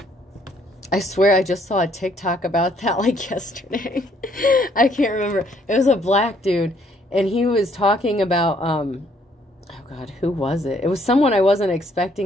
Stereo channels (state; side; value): normal; both; correlation 0.66